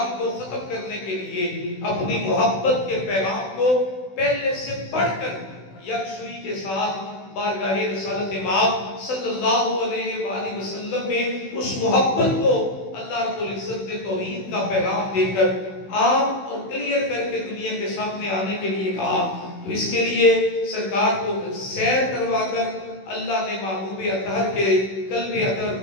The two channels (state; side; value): late; right; 16 ms